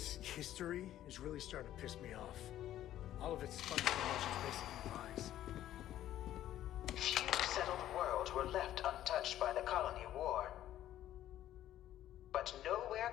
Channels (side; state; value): right; quieter; 12.6 dB